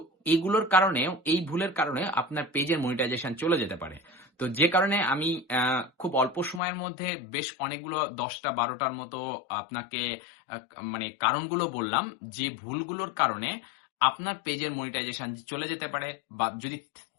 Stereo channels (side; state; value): right; drops out; at 6.6 s